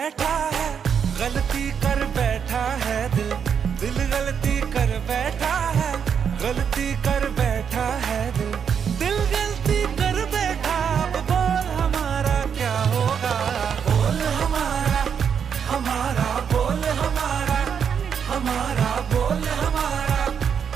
है, गलती कर बैठा है दिल। दिल गलती कर बैठा है, गलती कर बैठा है दिल। दिल गलती कर बैठा, अब बोल हमारा क्या होगा। बोल हमारा, हमारा बोल हमारा, हमारा बोल हमारा,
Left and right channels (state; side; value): quieter; left; 7.3 dB